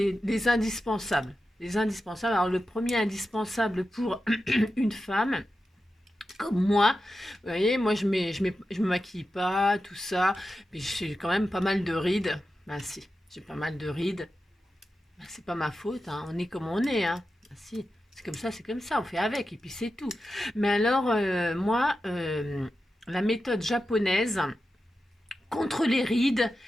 indispensables. Les indispensables. Alors, le premier indispensable pour une femme, comme moi, vous voyez, moi, je me maquille pas, tout ça. Mais j'ai quand même pas mal de rides. Ben, si, j'ai pas mal de rides. Ben, c'est pas ma faute, hein. On est comme on est, hein. Ben, si, c'est comme ça, on fait avec, et puis c'est tout. Mais alors, moi, la méthode japonaise contre les rides,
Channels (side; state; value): both; normal; correlation 0.91